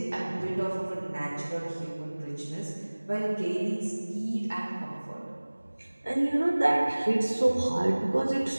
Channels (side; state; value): both; inverted; correlation -1.00